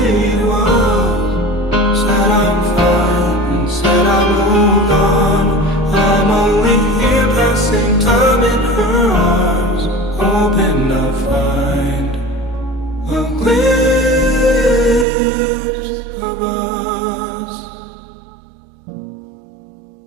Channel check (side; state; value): left; drops out; at 15.1 s